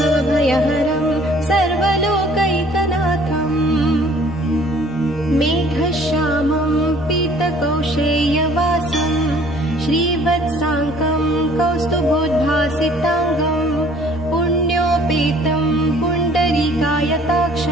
सर्वलोकैकनाथम् मेघश्यामं पीतकौशेयवासं श्रीवत्साङ्कं कौस्तुभोद्भासिताङ्गं पुण्योपेतं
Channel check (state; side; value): noise; left; hum, 21 dB below the sound